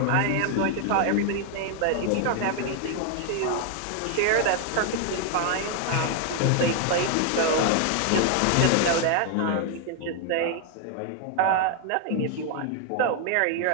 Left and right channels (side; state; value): both; different; correlation 0.00